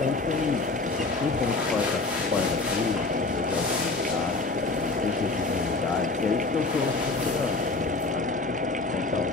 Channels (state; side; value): quieter; right; 3.5 dB